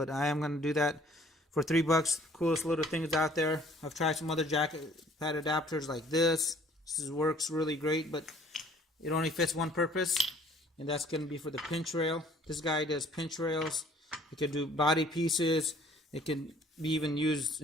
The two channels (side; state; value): both; normal; correlation 0.56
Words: I am going to do that for $3. Coolest little things out there. I've tried some other jack pad adapters like this. This works really great, but it only fits one purpose, and that's going to be for the pinch rail. This guy does pinch rails. It can do body pieces. It can be even used